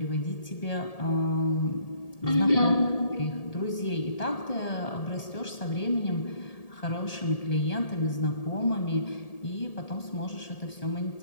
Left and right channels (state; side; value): late; right; 1.8 ms